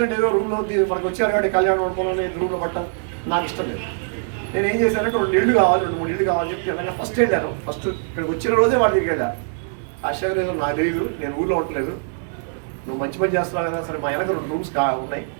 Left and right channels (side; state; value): left; silent; digital silence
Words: అంటే ఏదో రూమ్లో మనకు వచ్చారు కాబట్టి కళ్యాణం వండుకోవాలని రూమ్లో పట్టడం నాకు ఇష్టం లేదు. నేను ఏం చేశానంటే 2 ఇళ్ళు కావాలి, 2-3 ఇళ్ళు కావాలని చెప్పి తెలంగాణ ఫస్ట్ వెళ్ళాను. ఫస్ట్ ఇక్కడికి వచ్చిన రోజే వాళ్ళ దగ్గరికి వెళ్ళా. ఆశ్చర్యం ఏదో నాకు తెలియదు, నేను ఊళ్ళో ఉండలేదు, నువ్వు మంచి పని చేస్తున్నావు కదా, సరే మా వెనక 2 రూమ్స్ ఉన్నాయి,